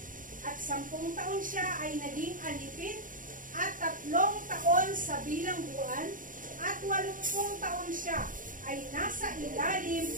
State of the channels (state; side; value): late; left; 0.39 ms